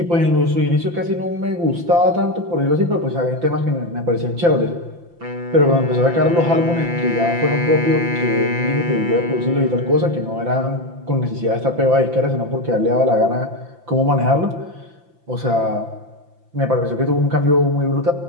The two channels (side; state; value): left; late; 5.9 ms